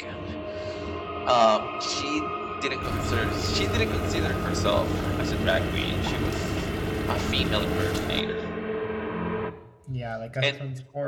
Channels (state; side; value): identical; both; correlation 1.00